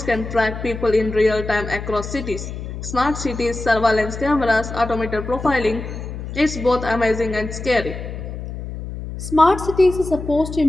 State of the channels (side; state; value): left; noise; hum, 8 dB below the sound